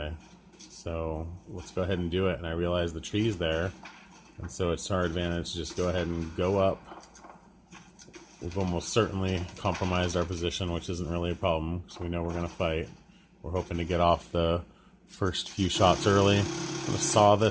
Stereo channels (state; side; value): identical; both; correlation 1.00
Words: So let's go ahead and do it. And I realize the tree's there. And so it's our advantage to just go ahead and go up. We've almost certainly compromised our position, which isn't really a problem, because we know we're going to fight. We're hoping to get off the first few shots early. I'm going to saw